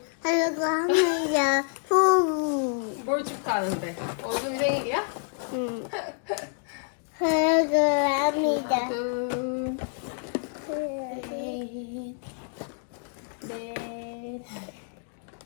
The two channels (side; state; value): right; silent; 59 dB below the other